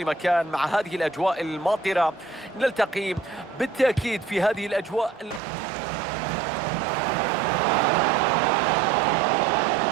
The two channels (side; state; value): left; drops out; at 5.4 s